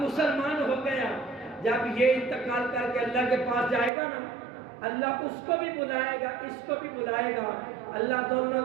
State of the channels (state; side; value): drops out; left; at 3.9 s